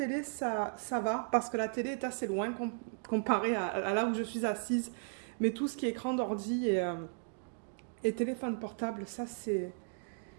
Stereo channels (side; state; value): left; silent; digital silence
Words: ça va parce que la télé est assez loin comparé à là où je suis assise. Mais tout ce qui est écran d'ordi et téléphone portable, ça, c'est...